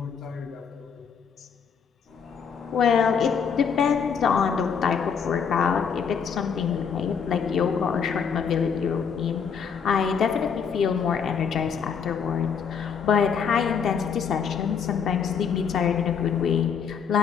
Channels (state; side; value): quieter; right; 6.7 dB